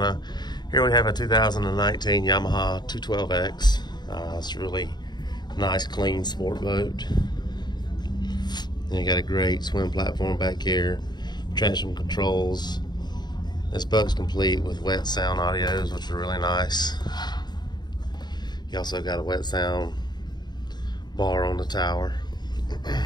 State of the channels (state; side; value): late; right; 0.21 ms